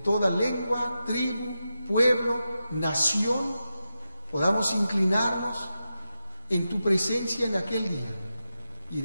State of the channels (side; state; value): both; inverted; correlation -0.90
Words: lengua, tribu, pueblo, nación, podamos inclinarnos en tu presencia en aquel día y